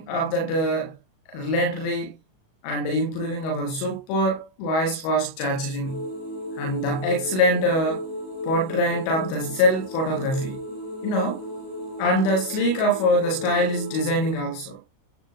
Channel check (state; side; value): late; right; 37 ms